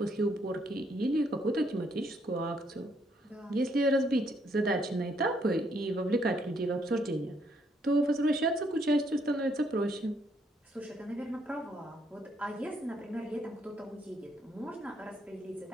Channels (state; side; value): normal; both; correlation 0.71